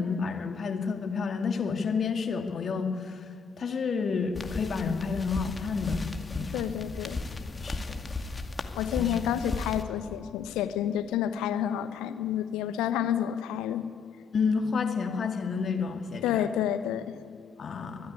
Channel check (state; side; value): quieter; right; 6.3 dB